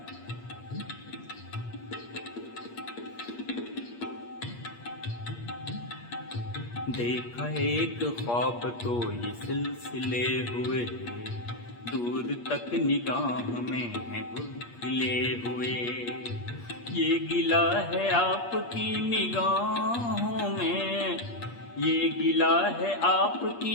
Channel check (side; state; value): right; late; 8.5 ms